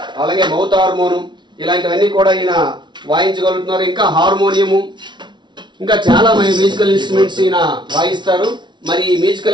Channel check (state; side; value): late; left; 0.22 ms